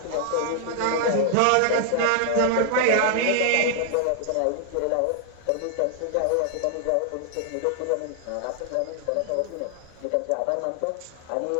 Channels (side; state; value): both; different; correlation 0.00